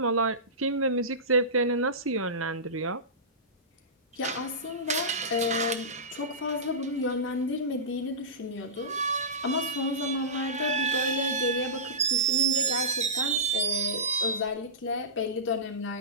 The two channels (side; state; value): both; normal; correlation -0.19